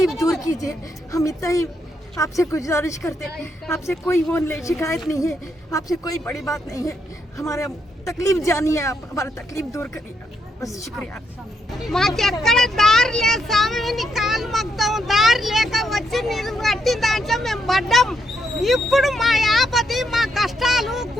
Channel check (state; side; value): normal; both; correlation 0.79